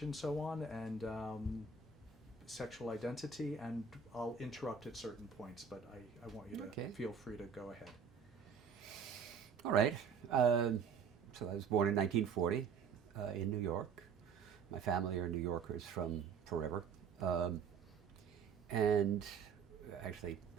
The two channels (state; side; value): quieter; left; 6.1 dB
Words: and so on, and sexual identity, and I'll interrupt at certain points, but I want you to feel free to go ahead. All right. So I was born in 1940 in New York. My family are New Yorkers from forever. And actually,